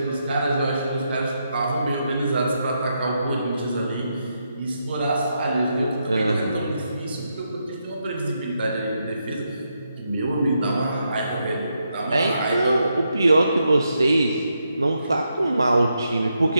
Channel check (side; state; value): both; inverted; correlation -0.82